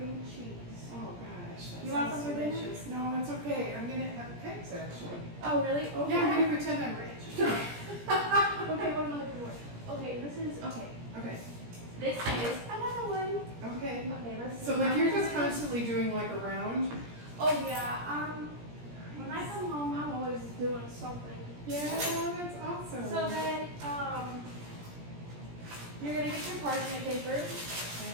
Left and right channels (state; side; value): late; left; 17 ms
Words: and cheese. Oh gosh, that You want sounds some for dinner? delicious. No, it's okay. I'm gonna have pigs actually. Oh, really? Okay. Yeah, I'm gonna pretend I'm rich. Okay, what am I looking for? Okay, this is, okay. Okay. This is another one. Okay. Okay, let's see. So like you're just constantly doing like a round? Oh yeah, when I come home, I'm always doing something. Yeah, that's awesome. So then, you're gonna get your parchment paper.